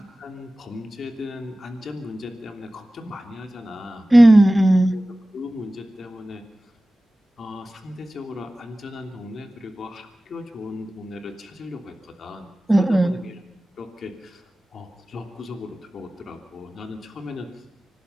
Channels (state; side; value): normal; both; correlation 0.97